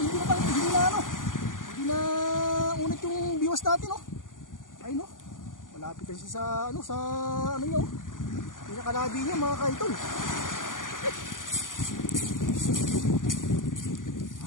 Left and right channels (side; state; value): right; late; 0.88 ms